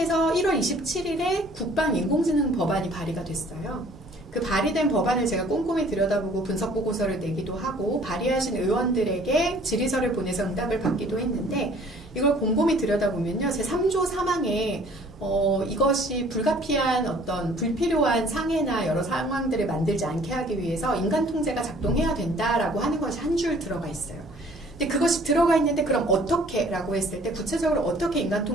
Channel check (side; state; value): both; normal; correlation 0.54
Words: 1월 27일에 국방 인공지능 법안이 발의가 됐어요. 그 발의된 법안을 제가 꼼꼼히 들여다보고 분석 보고서를 내기도 하고 발의하신 의원들에게 질의서를 보내서 응답을 받기도 했는데 이걸 곰곰이 들여다보면요. 제 3조 3항에 이것이 불가피한 어떤 불필요한 상해나 여러 상황들을 만들지 않게 하기 위해서 인간 통제가 작동해야 된다라고 하는 것이 한 줄 들어가 있어요. 근데 그것이 들어가 있는데 그럼 어떻게? 라고 했을 때 구체적으로 어떻게 인간